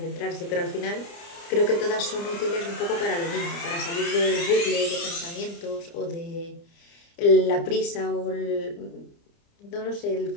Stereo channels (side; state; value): right; late; 29 ms